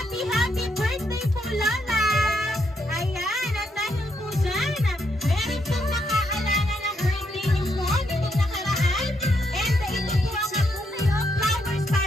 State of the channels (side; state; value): both; normal; correlation 0.77